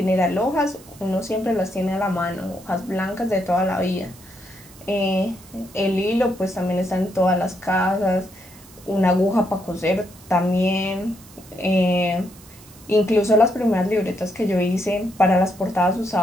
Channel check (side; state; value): right; noise; hiss, 23 dB below the sound